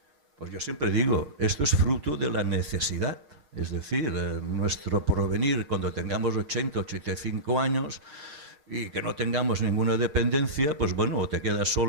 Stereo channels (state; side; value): late; left; 6.6 ms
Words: Pues yo siempre digo, esto es fruto de la necesidad. Es decir, nuestro porvenir, cuando tengamos 80, 85 años y que no tengamos ninguna dependencia, pues bueno, o te quedas